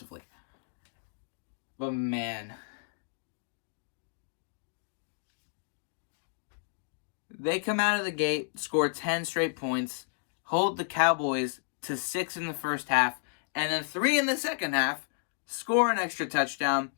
But man, they come out of the gate, score 10 straight points, hold the Cowboys to 6 in the first half, and then 3 in the second half, score an extra touchdown.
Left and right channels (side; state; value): right; silent; digital silence